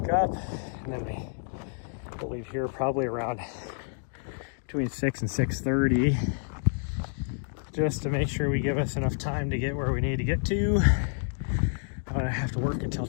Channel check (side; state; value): right; silent; digital silence